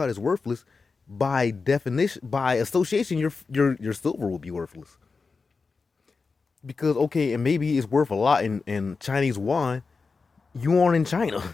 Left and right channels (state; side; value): quieter; right; 4.5 dB